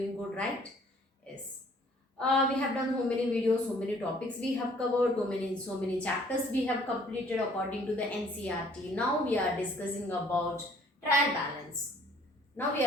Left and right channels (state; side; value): normal; both; correlation 0.59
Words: good, right? Yes. We have done so many videos, so many topics we have covered, so many chapters we have completed according to the NCRT. Now we are discussing about trial balance. Now we